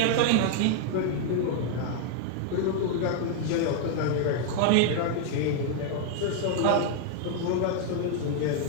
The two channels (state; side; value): different; both; correlation -0.01